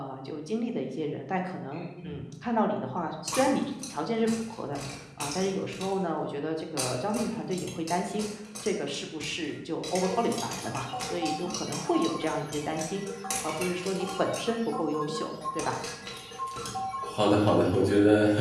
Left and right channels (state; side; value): identical; both; correlation 1.00